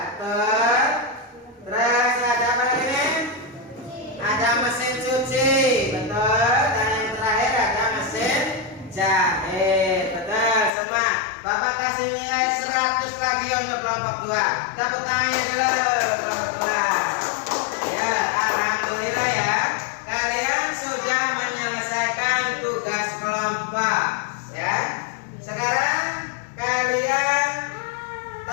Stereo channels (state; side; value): drops out; right; at 10.7 s